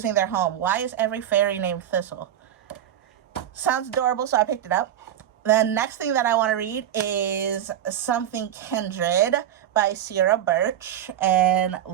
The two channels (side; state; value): left; quieter; 10.8 dB